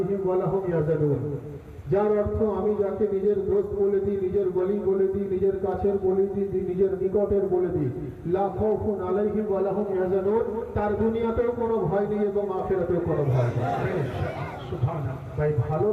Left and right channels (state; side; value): identical; both; correlation 1.00